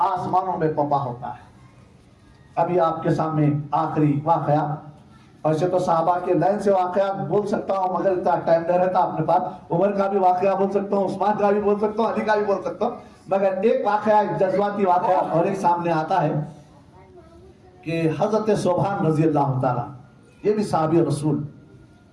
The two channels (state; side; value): identical; both; correlation 1.00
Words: آسمانوں میں پپا ہوتا ہے. ابھی آپ کے سامنے آخری واقعہ, ایسے تو صحابہ کے لائن سے واقعات بول سکتا ہوں مگر اتنا ٹائم نہیں رہتا اپنے پاس. عمر کا بھی واقعہ بول سکتا ہوں, عثمان کا بھی بول سکتا ہوں, علی کا بھی بول سکتا ہوں, مگر ایک واقعہ, ایک جذباتی واقعہ اور ایک سامنے آتا ہے کہ حضرت صوبان رضی اللہ تعالیٰ, یہ بھی صحابی رسول,